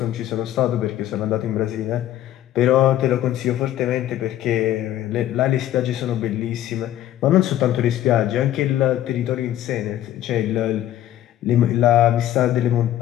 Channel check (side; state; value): right; quieter; 12.7 dB